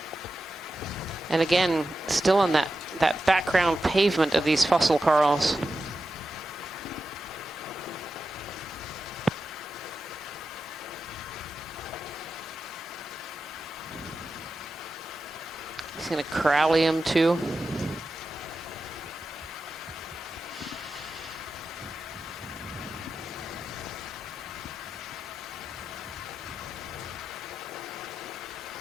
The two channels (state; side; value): normal; both; correlation 0.91